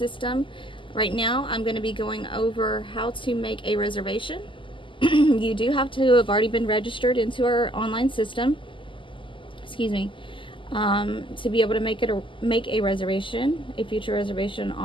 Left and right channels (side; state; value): right; late; 0.25 ms